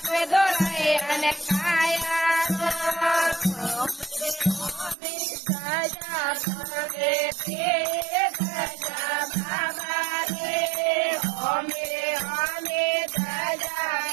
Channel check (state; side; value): drops out; left; at 5.0 s